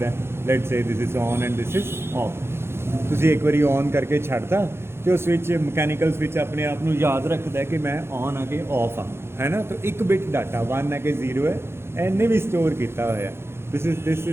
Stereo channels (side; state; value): left; late; 0.12 ms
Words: Let's say this is on and this is of. ਤੁਸੀਂ ਇੱਕ ਵਾਰੀ ਔਨ ਕਰਕੇ ਛੱਡਤਾ ਅਤੇ ਉਹ ਸਵਿਚ ਮਕੈਨੀਕਲ ਸਵਿਚ ਆਪਣੇ ਆਪ ਨੂੰ ਯਾਦ ਰੱਖਦਾ ਕਿ ਮੈਂ ਔਨ ਆ ਕੇ ਆਫ ਹਾਂ, ਹੈ ਨਾ। ਤਾਂ ਇੱਕ ਬਿਟ ਡਾਟਾ 1 ਹੈ ਕਿ 0 ਹੈ, ਇਹਨੇ ਵੀ ਸਟੋਰ ਕੀਤਾ ਹੋਇਆ। This